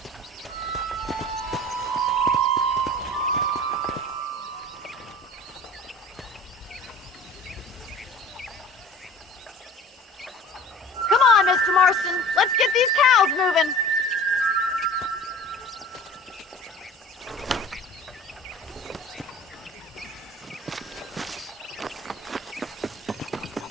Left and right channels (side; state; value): both; normal; correlation 0.42